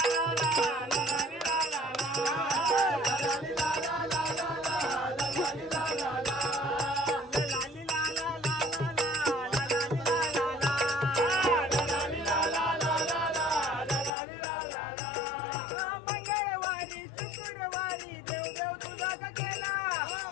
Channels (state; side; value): drops out; right; at 14.1 s